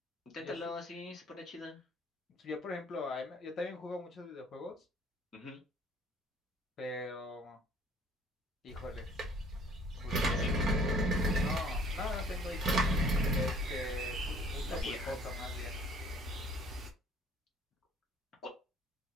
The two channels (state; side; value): normal; both; correlation 0.55